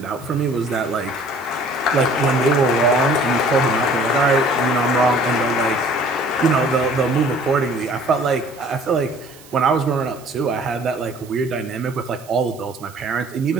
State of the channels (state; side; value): noise; right; hiss, 23 dB below the sound